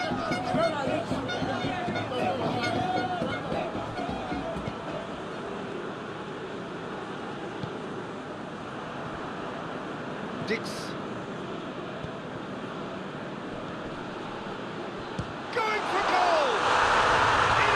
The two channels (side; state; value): both; identical; correlation 1.00